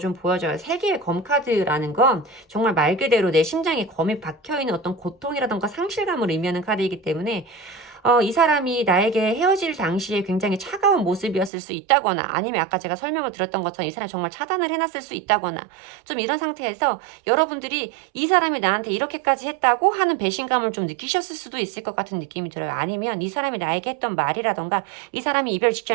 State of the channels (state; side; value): drops out; left; at 11.5 s